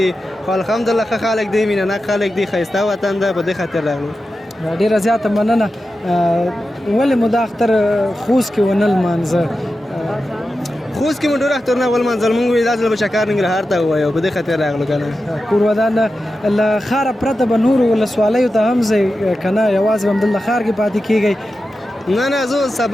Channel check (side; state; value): both; normal; correlation 0.92